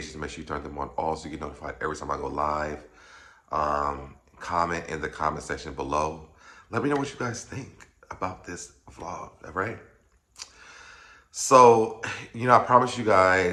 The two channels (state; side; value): identical; both; correlation 1.00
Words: make sure you turn them on all so you get notified every time I go live. Comment in the comment section below. Let me know what you guys think about this vlog, all right? So, I promised you